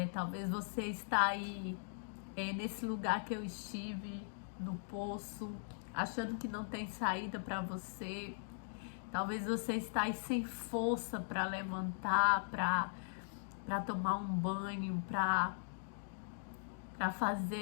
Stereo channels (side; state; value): right; silent; digital silence